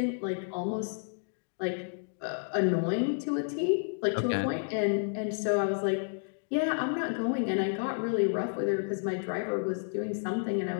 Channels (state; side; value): silent; right; digital silence